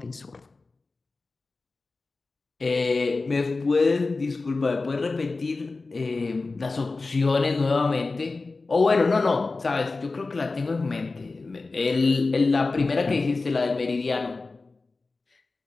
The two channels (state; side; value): quieter; right; 3.7 dB